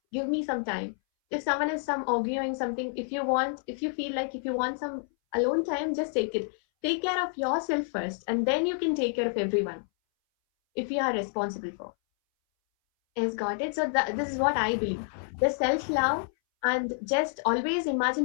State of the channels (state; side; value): silent; right; 59 dB below the other